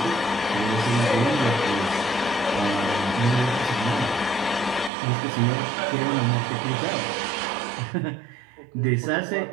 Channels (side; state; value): left; drops out; at 4.9 s